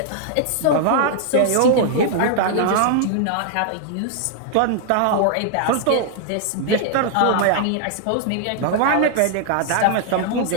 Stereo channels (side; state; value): both; different; correlation 0.00